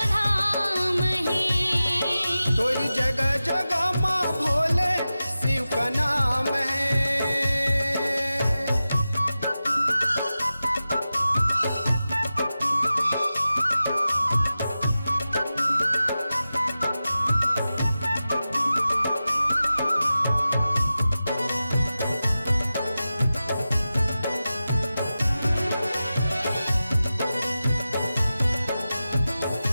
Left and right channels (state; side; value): inverted; both; correlation -0.94